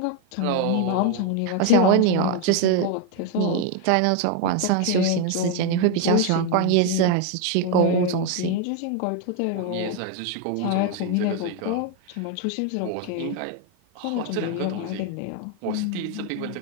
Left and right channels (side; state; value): both; different; correlation 0.01